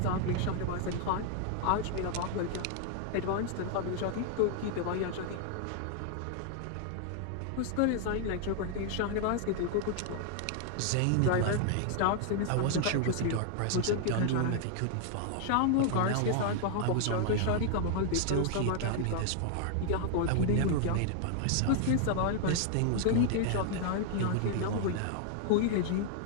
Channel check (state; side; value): different; both; correlation 0.00